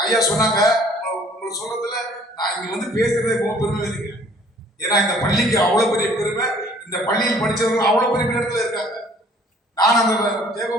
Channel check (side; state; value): both; normal; correlation 0.56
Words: ஐயா சொன்னாங்க, உங்களை சொல்றதுல நான் இங்க வந்து பேசுறதே ரொம்ப பெருமை இருக்கு. ஏன்னா இந்த பள்ளிக்கு அவ்வளவு பெரிய பெருமை, இந்த பள்ளியில் படிச்சவங்க அவ்வளவு பெரிய இடத்துல இருக்காங்க. நான் அந்த